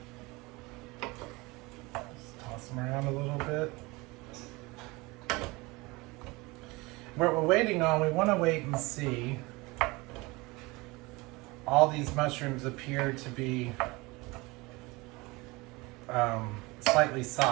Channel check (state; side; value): quieter; left; 23.7 dB